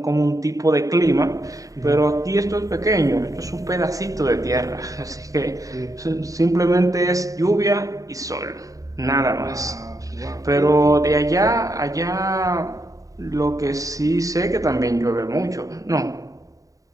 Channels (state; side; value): late; left; 0.16 ms